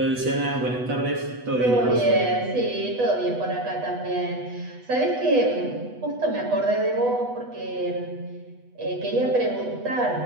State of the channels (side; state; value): left; late; 8.1 ms